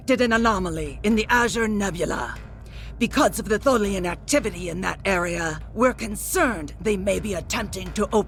an anomaly in the Azure Nebula. Because of the Tholian activity in that area, we're concerned they may be attempting to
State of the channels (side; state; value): both; identical; correlation 1.00